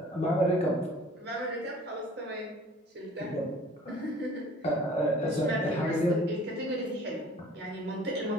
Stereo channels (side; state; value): both; normal; correlation 0.50